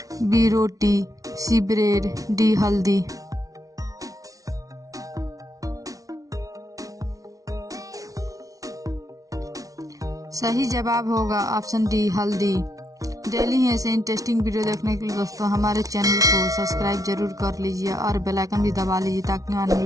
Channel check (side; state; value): left; late; 0.17 ms